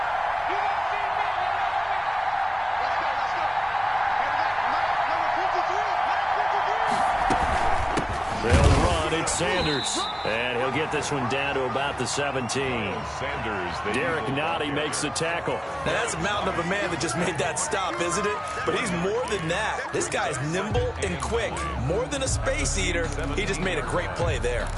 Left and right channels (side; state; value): both; identical; correlation 1.00